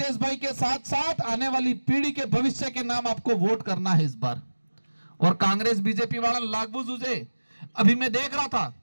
भाई के साथ साथ आने वाली पीढ़ी के भविष्य के नाम आपको वोट करना है इस बार। और कांग्रेस बीजेपी वाला लागू जुझे, अभी मैं देख रहा था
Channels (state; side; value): inverted; both; correlation -1.00